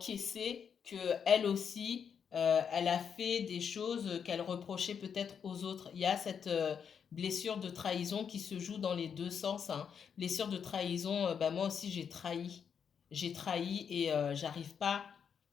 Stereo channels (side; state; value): right; quieter; 7.2 dB